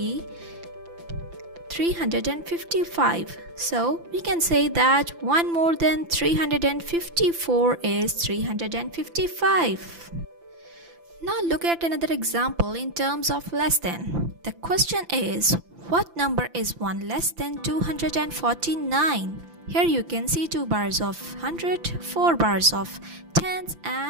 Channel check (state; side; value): late; left; 5.9 ms